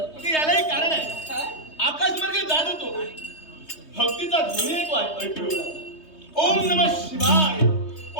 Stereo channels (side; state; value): right; late; 3.2 ms